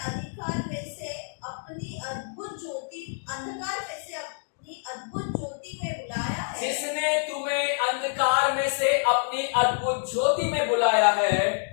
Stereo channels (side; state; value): right; silent; digital silence